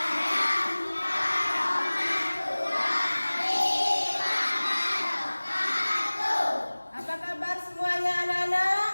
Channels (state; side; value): inverted; both; correlation -1.00